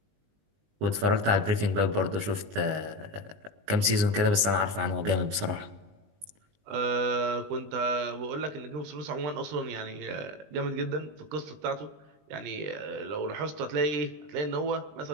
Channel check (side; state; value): left; late; 20 ms